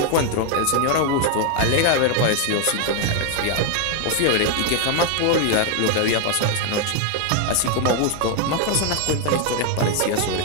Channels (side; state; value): both; different; correlation 0.00